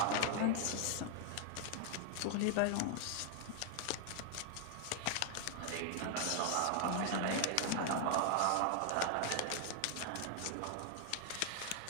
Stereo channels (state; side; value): different; both; correlation 0.00